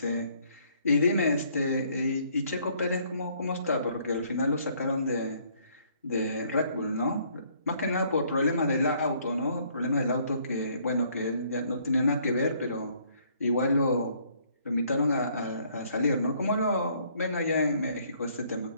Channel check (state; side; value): inverted; both; correlation -0.64